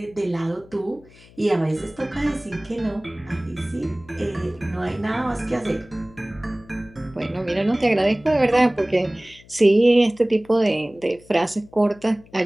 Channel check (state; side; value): noise; left; hum, 25 dB below the sound